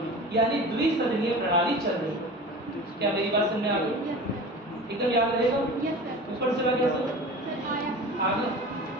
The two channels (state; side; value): normal; both; correlation 0.36